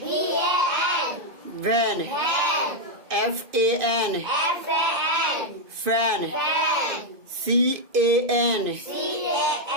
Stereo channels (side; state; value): left; late; 2.5 ms